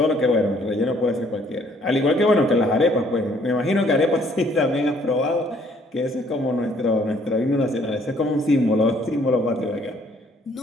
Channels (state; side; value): normal; both; correlation 0.63